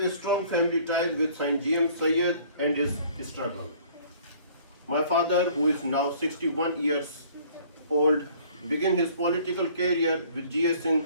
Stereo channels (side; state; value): both; inverted; correlation -0.55